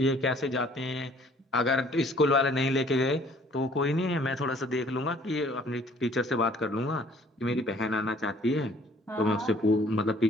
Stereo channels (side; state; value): both; normal; correlation 0.57